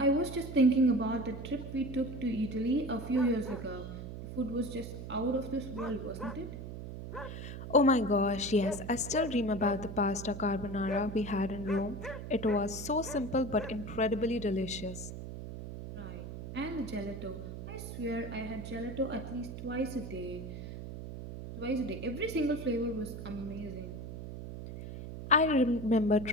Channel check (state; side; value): noise; right; hum, 9 dB below the sound